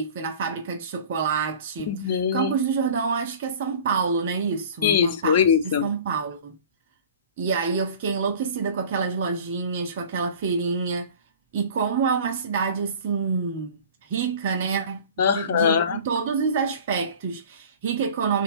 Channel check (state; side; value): inverted; both; correlation -0.42